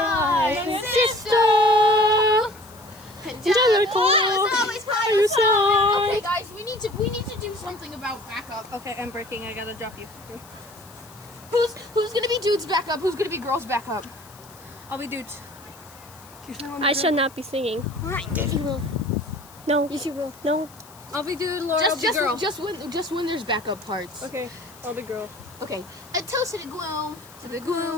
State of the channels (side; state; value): left; noise; hiss, 23 dB below the sound